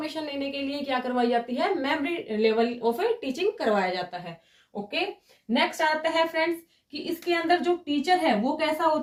लेने के लिए क्या करवाई जाती है, मेमोरी लेवल ऑफ टीचिंग करवाया जाता है। ओके, नेक्स्ट आता है फ्रेंड्स कि इसके अंदर जो टीचर है वो कैसा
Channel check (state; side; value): identical; both; correlation 1.00